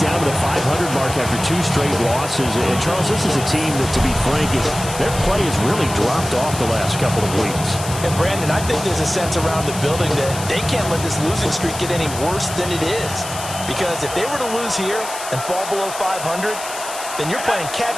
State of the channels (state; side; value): noise; left; hiss, 10 dB below the sound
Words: down to the 500 mark after 2 straight losses. And Charles, this is a team that, to be frank, their play has really dropped off the last couple of weeks. And Brandon, I think there's a sense around the building that they can't let this losing streak get any worse than it is. Because if they were to lose here and fall below 500, then you're playing